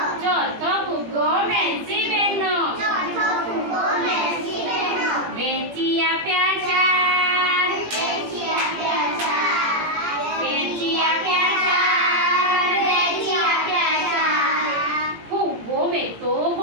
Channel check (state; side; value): late; left; 17 ms